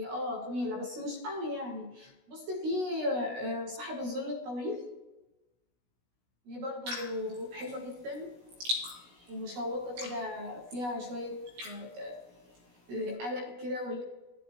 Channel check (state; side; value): late; left; 16 ms